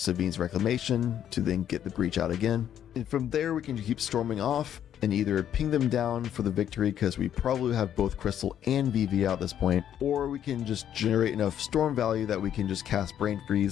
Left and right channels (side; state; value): right; quieter; 10.1 dB